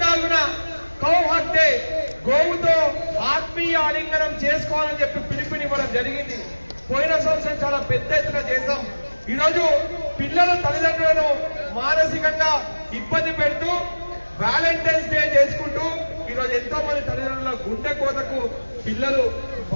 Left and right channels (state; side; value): inverted; both; correlation -1.00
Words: కౌ హక్ డే, గోవుతో ఆత్మీయ ఆలింగనం చేసుకోవాలని చెప్పి పిలుపునివ్వడం జరిగింది. పోయిన సంవత్సరం చాలా పెద్ద ఎత్తున చేశాం. ఈరోజు పిల్లల తల్లిదండ్రులను మానసికంగా ఇబ్బంది పెడుతూ వ్యాలంటైన్స్ డే చేసుకుంటూ ఈరోజు ఎంతో మంది తల్లిదండ్రుల గుండె కోతకు పిల్లలు